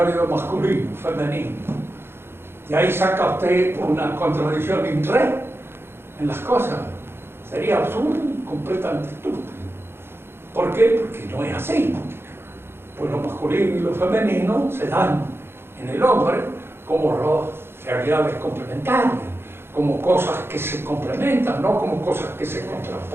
de masculino, femenino? Y ahí saca usted una contradicción in re en las cosas. Sería absurdo y completamente estúpido. ¿Por qué? Porque no es así. Pues lo masculino y lo femenino se dan en el hombre como realidades complementarias, como cosas que se complementan, no como cosas que se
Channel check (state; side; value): late; left; 0.11 ms